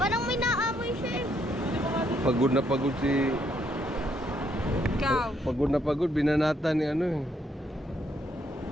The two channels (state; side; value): normal; both; correlation 0.72